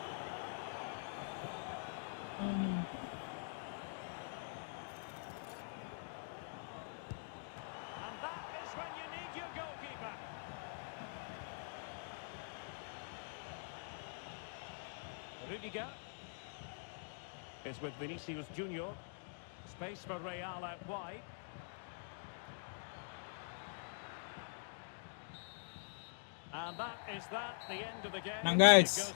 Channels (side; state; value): right; silent; digital silence